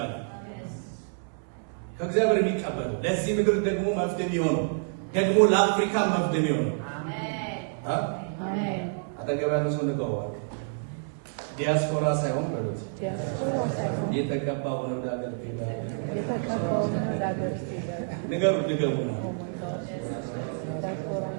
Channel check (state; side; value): silent; left; digital silence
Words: ከእግዚአብሔር የሚቀበሉ ለዚህ ምድር ደግሞ መፍትሄ የሚሆነው ደግሞ ለአፍሪካ መፍትሄ የሚሆነው አጠገብ ያለ ሰው ንገዋል። ዲያስፖራ ሳይሆን ማለት የተቀባ ሆነ ወደ ሀገር ንገሩ ሊገቡ ነው።